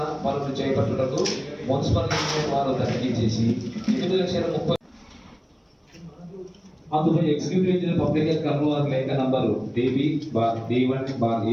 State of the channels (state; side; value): identical; both; correlation 1.00